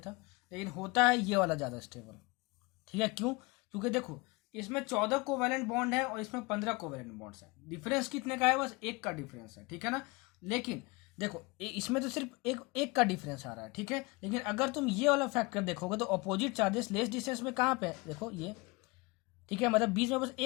था, लेकिन होता है ये वाला ज्यादा स्टेबल। ठीक है, क्यों, क्योंकि देखो इसमें 14 कोवैलेंट बॉन्ड है और इसमें 15 कोवैलेंट बॉन्ड्स है, डिफरेंस कितने का है, बस 1 का डिफरेंस है। ठीक है ना, लेकिन देखो इसमें तो सिर्फ एक का डिफरेंस आ रहा है। ठीक है, लेकिन अगर तुम ये वाला फैक्टर देखोगे तो अपोजिट चार्जेस लेस डिस्टेंस में कहाँ पे है, देखो ये। ठीक है, मतलब बीच में बस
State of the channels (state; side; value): quieter; right; 25.7 dB